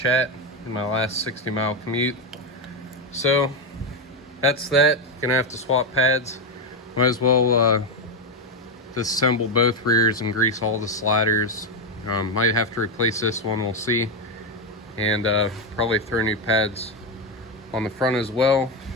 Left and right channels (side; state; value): both; normal; correlation 0.08